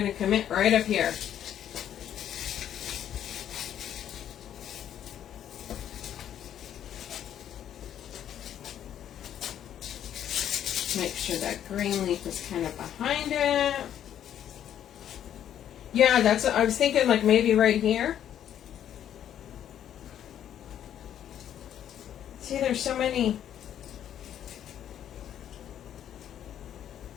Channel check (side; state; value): right; quieter; 10.3 dB